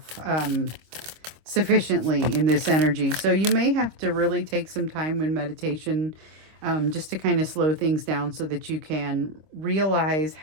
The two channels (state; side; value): late; left; 25 ms